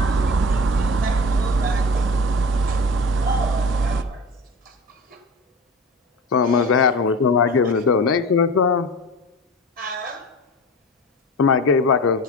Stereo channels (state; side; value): normal; both; correlation 0.32